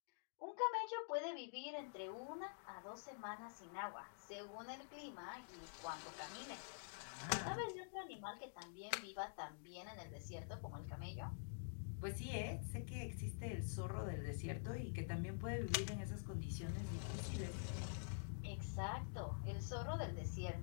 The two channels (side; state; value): right; silent; digital silence